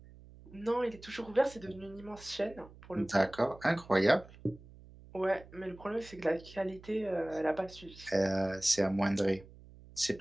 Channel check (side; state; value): right; noise; hum, 20 dB below the sound